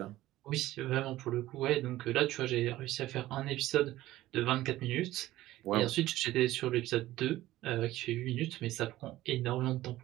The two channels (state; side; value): quieter; left; 15.8 dB